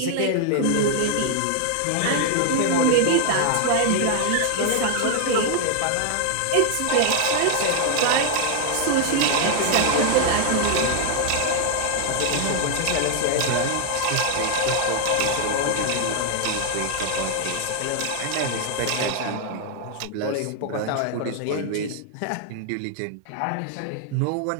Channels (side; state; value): both; different; correlation 0.00